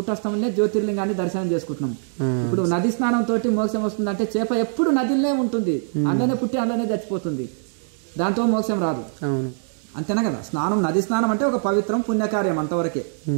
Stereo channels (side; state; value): left; silent; digital silence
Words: జ్యోతిర్లింగాన్ని దర్శనం చేసుకుంటున్నాం. ఇప్పుడు నది స్నానం తోటి మోక్షం వస్తుంది అంటే, చేప ఎప్పుడు నదిలోనే ఉంటుంది, అందులోనే పుట్టి అందులోనే చచ్చిపోతుంది, దాంతో మోక్షం రాదు. అంతేనా కదా? స్నానం, నది స్నానం అంటే ఒక పవిత్రం పుణ్యకార్యం అంతవరకే.